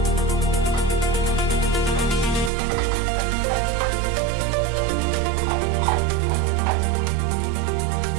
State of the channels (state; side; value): drops out; left; at 2.5 s